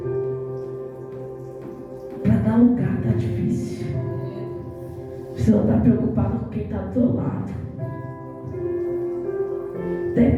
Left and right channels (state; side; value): identical; both; correlation 1.00